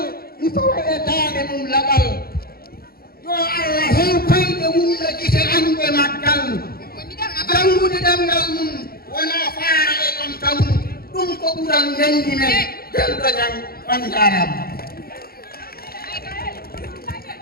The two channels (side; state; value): right; late; 0.44 ms